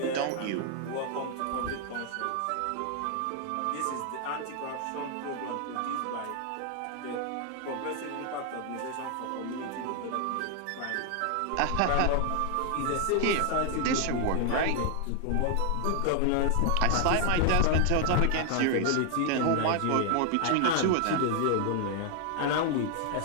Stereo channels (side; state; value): both; different; correlation 0.00